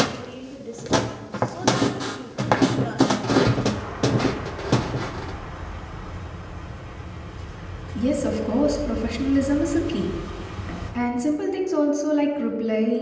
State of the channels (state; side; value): identical; both; correlation 1.00